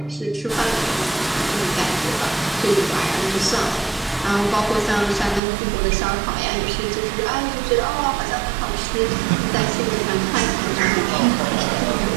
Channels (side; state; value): left; drops out; at 5.4 s